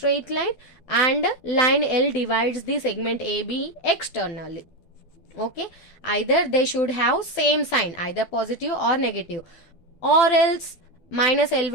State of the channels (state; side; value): late; right; 12 ms